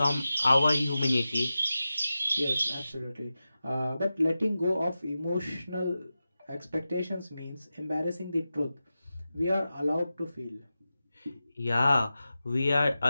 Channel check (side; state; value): both; inverted; correlation -0.93